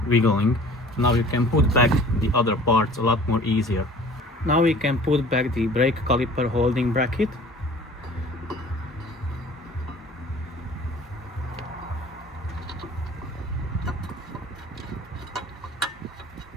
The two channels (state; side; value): normal; both; correlation 0.47